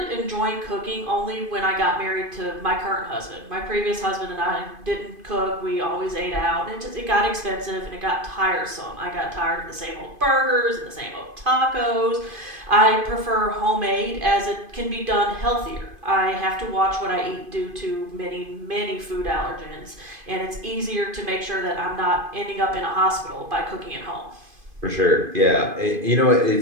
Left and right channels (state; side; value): late; left; 2.5 ms